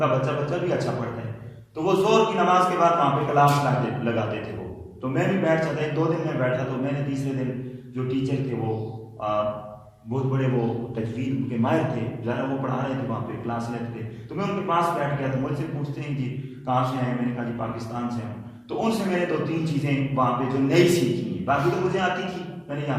بچہ بھی اچھا پڑھتا ہے. تو وہ زور کی نماز کے بعد وہاں پہ کلاس لگاتے تھے وہ. تو میں بھی بیٹھ جاتا. 1-2 دن میں بیٹھا تو میں نے تیسرے دن جو ٹیچر تھے وہ بہت بڑے وہ تجوید کے ماہر تھے، ذرا وہ پڑھا رہے تھے، وہاں پہ کلاس لیتے تھے. تو میں ان کے پاس بیٹھ گیا. تو مجھ سے پوچھتے ہیں جی کہاں سے آئے؟ میں نے کہا جی پاکستان سے ہوں. تو ان سے میں نے 2-3 چیزیں وہاں پہ جو نئی سیکھی ہیں، باقی تو مجھے آتی تھی، میں نے یہاں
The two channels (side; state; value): both; identical; correlation 1.00